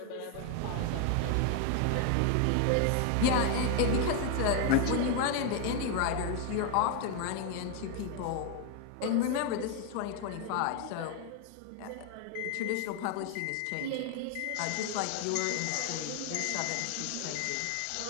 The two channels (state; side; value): different; both; correlation 0.00